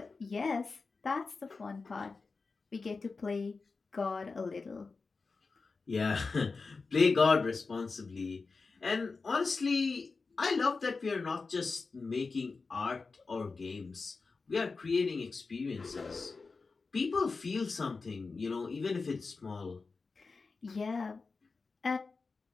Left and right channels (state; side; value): quieter; right; 4.3 dB